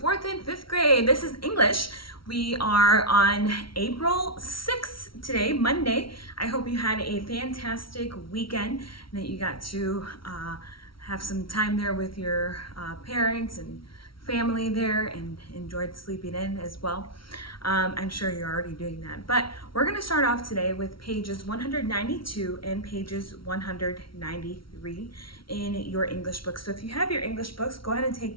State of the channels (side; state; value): right; late; 0.74 ms